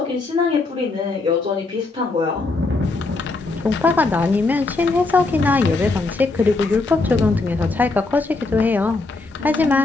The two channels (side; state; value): right; quieter; 3.6 dB